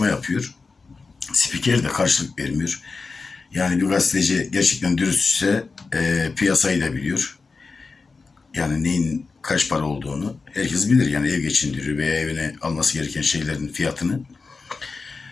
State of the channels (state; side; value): quieter; right; 4.3 dB